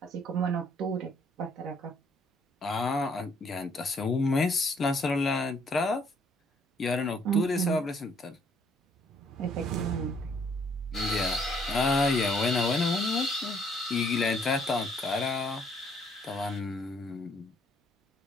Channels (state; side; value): normal; both; correlation 0.65